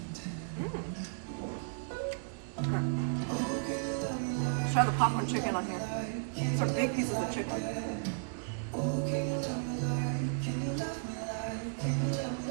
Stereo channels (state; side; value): silent; left; digital silence